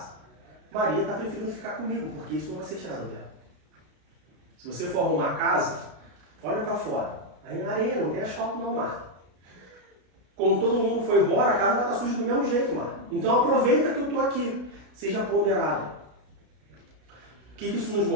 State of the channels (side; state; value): left; late; 33 ms